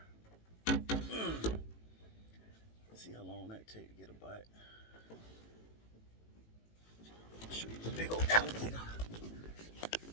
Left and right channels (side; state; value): right; late; 18 ms